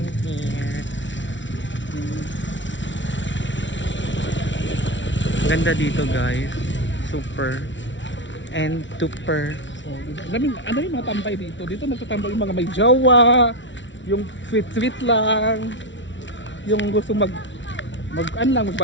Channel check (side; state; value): right; late; 0.55 ms